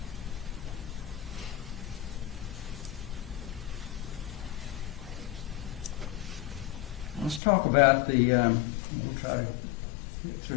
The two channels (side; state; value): right; drops out; at 7.4 s